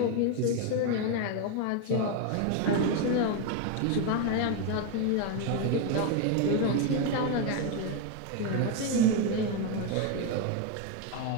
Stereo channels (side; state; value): both; different; correlation 0.02